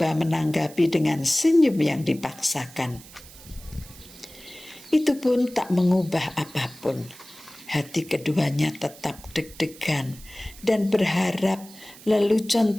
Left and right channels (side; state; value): right; noise; hiss, 20 dB below the sound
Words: menanggapi dengan senyum yang dipaksakan. Itu pun tak mengubah apapun. Hati keduanya tetap deg-degan dan berharap lelucon